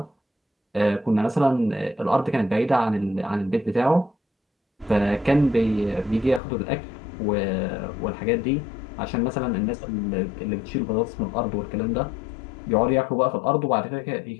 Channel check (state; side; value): drops out; right; at 6.4 s